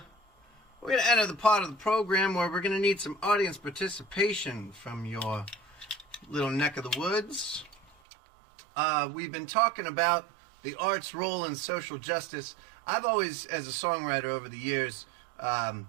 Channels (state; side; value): drops out; left; at 8.0 s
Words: going to enter the part of the program where we're going to need some audience participation from your little neck of the woods. We've been talking about the art's role in social justice. I've always, as a songwriter over the years,